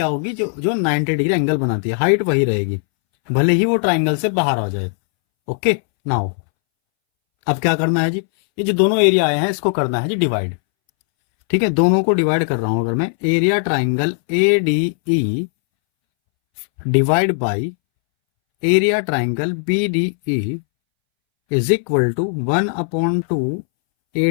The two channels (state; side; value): silent; right; 65 dB below the other